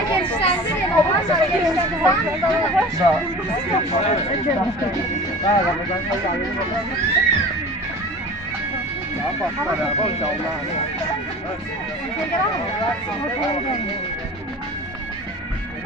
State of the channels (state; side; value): normal; both; correlation 0.38